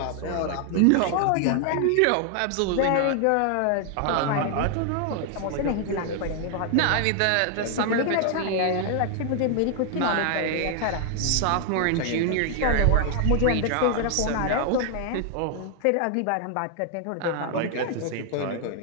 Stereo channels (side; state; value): both; different; correlation 0.00